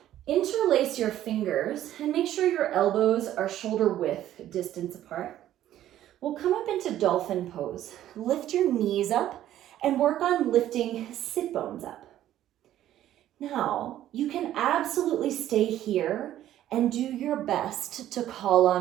Interlace your fingers and make sure your elbows are shoulder width distance apart. We'll come up into Dolphin Pose. Lift your knees up and work on lifting sit bones up. Now, you can absolutely stay here and do your best to call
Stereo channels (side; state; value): left; quieter; 12.5 dB